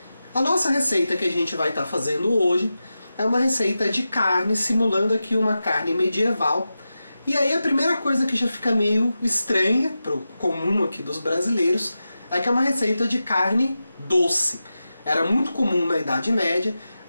A nossa receita que a gente vai estar fazendo hoje é uma receita de carne, simulando aqui uma carne medieval. E aí a primeira coisa que já fica meio estranha, para o comum aqui dos brasileiros, é que é uma receita de carne doce. Era muito comum na Idade Média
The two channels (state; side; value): inverted; both; correlation -0.92